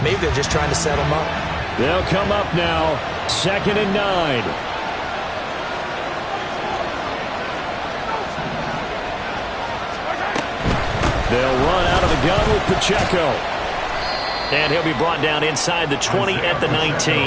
Maybe they're just trying to set them up. They'll come up now, 2nd and 9. They'll run out of the gun with Pacheco. And he'll be brought down inside the 20 at the 19.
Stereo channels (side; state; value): both; identical; correlation 1.00